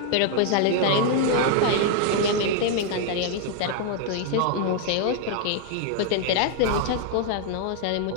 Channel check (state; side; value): different; both; correlation 0.00